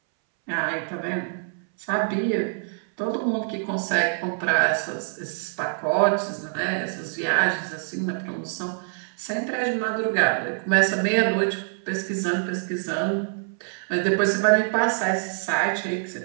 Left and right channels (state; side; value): silent; left; 62 dB below the other